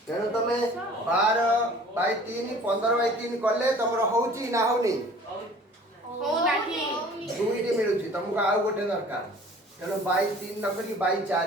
तेणु तमे 12/3 15/3 कले तमर होउची ना होनी दुईटी मिलुची तुमको आउ गोटे दरकार तेणु 22/3 न करी 22/4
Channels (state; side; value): normal; both; correlation 0.48